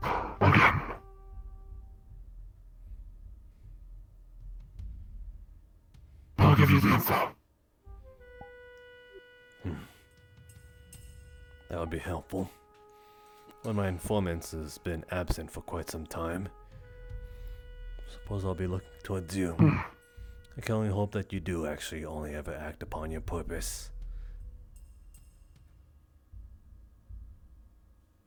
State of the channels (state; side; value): identical; both; correlation 1.00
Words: again, I'll give you the info. That would be helpful. One of my informants has been absent for quite some time. Suppose I'll be looking towards you. I can only hope that you do actually only ever act upon your purpose.